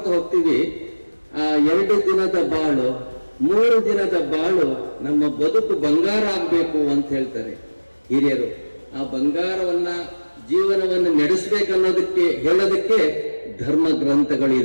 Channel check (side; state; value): both; inverted; correlation -1.00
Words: ಹೋಗ್ತೀವಿ. ಆ 2 ದಿನದ ಬಾಳು 3 ದಿನದ ಬಾಳು ನಮ್ಮ ಬದುಕು ಬಂಗಾರ ಆಗ್ಬೇಕು ಅಂತ ಹೇಳ್ತಾರೆ ಹಿರಿಯರು. ಆ ಬಂಗಾರವನ್ನ ಜೀವನವನ್ನು ನಡೆಸಬೇಕನ್ನೋದಕ್ಕೆ ಹೇಳೋದಕ್ಕೆ ಧರ್ಮ